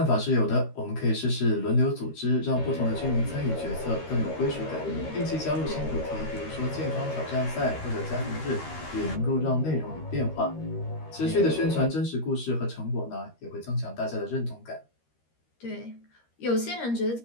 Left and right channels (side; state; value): right; late; 13 ms